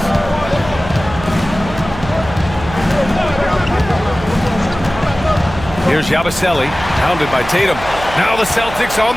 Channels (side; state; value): right; noise; hum, 12 dB below the sound